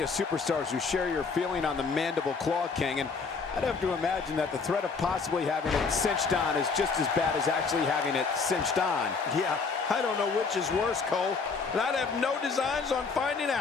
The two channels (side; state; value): right; quieter; 4.8 dB